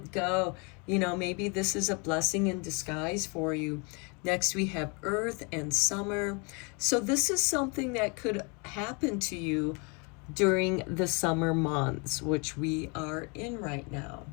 go. You know, maybe this is a blessing in disguise for you. Next, we have earth and summer. So this is something that could happen to you during the summer months, which we are in right now.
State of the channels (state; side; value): quieter; right; 32.4 dB